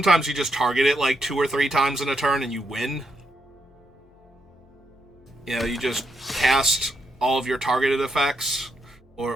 you just target it like 2 or 3 times in a turn and you win. You know, you just cast all of your targeted effects.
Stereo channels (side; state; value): both; normal; correlation 0.80